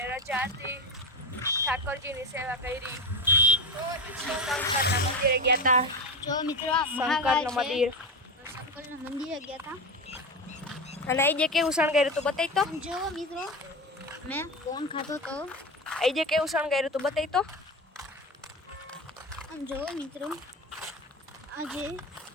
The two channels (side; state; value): both; normal; correlation 0.21